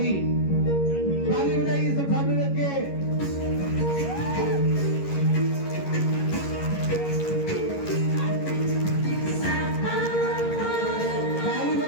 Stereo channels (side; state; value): right; late; 11 ms